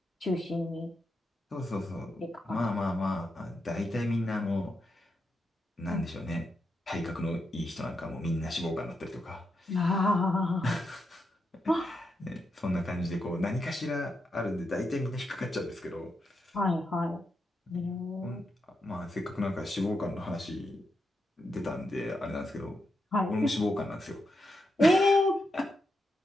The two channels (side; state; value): both; normal; correlation 0.84